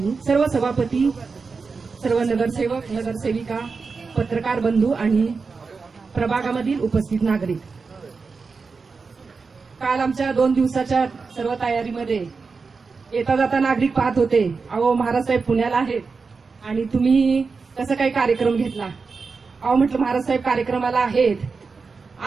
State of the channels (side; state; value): left; quieter; 4.7 dB